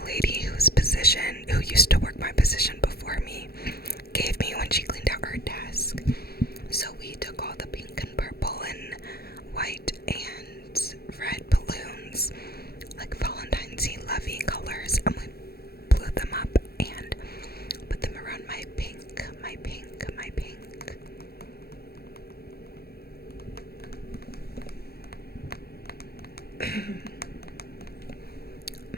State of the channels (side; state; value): right; late; 0.45 ms